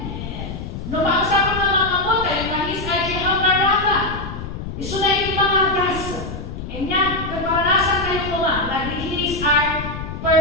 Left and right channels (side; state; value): left; noise; rumble, 8 dB below the sound